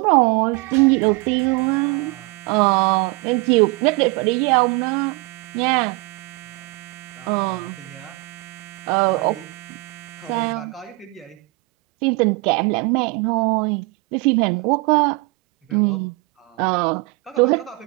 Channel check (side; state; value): left; quieter; 24.9 dB